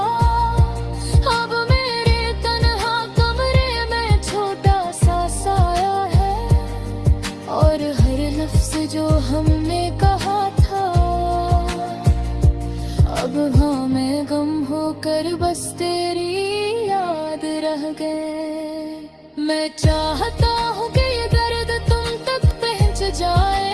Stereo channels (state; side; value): identical; both; correlation 1.00